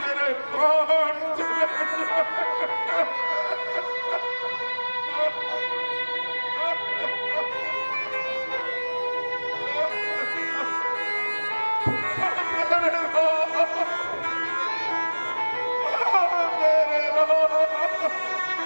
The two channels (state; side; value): inverted; both; correlation -1.00